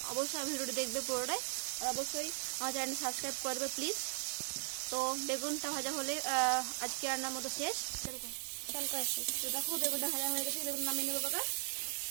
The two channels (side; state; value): left; silent; 52 dB below the other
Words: অবশ্যই ভিডিওটি দেখবে পুরোটাই, আর অবশ্যই আমার চ্যানেলটি সাবস্ক্রাইব করবে প্লিজ। তো বেগুনটা ভাজা হলে আজকে রান্নার মতো শেষ। তো দেখো বেগুনটা ভাজা হয়ে গেছে, বেগুন নামিয়ে নেবো বাবা।